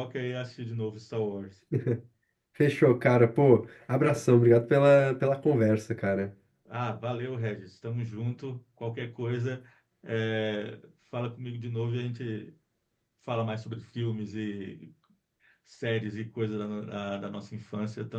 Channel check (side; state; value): both; identical; correlation 1.00